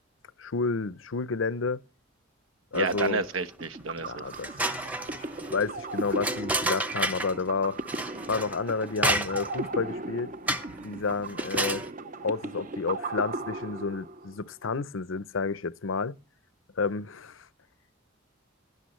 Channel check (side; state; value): both; normal; correlation -0.09